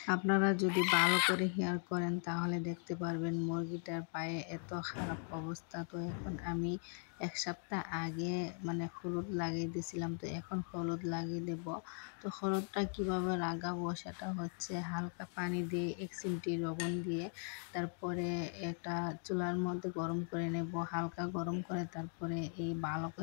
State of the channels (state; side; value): silent; right; 52 dB below the other